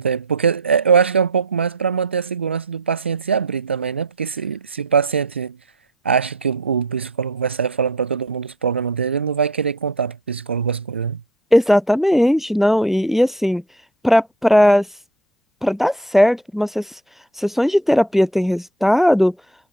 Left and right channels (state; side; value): normal; both; correlation 0.46